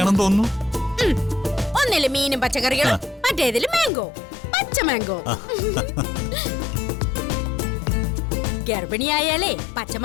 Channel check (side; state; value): right; drops out; at 3.9 s